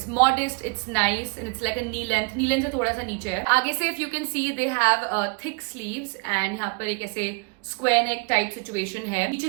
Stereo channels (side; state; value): left; quieter; 31.6 dB